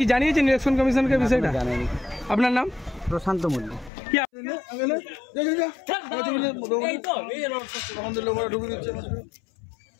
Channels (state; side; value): drops out; right; at 3.9 s